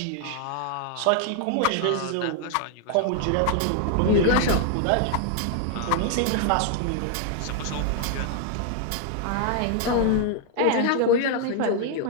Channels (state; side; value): different; both; correlation 0.00